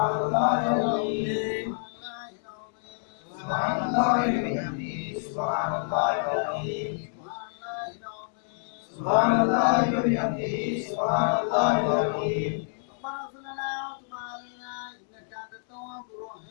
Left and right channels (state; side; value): silent; right; digital silence